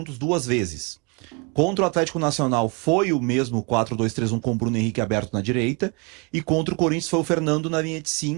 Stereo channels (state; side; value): quieter; left; 32.4 dB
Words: 2 vezes. Contra o Atlético Nacional foi o mesmo 4-2-3-1 com o Bruno Henrique aberto na direita. E contra o Corinthians foi o Fernando na linha de